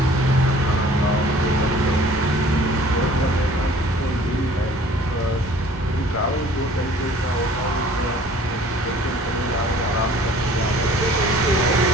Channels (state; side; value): normal; both; correlation 0.51